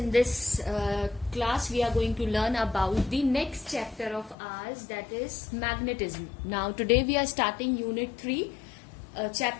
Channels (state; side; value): drops out; right; at 4.4 s